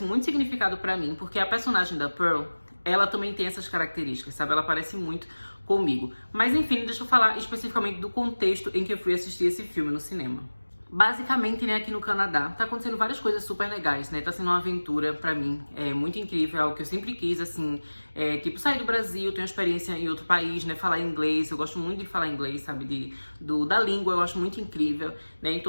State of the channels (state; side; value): inverted; both; correlation -1.00